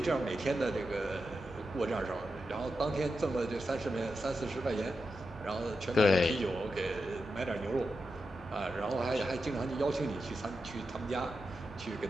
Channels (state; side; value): normal; both; correlation 0.88